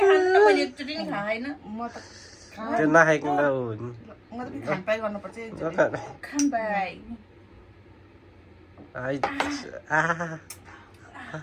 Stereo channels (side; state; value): both; identical; correlation 1.00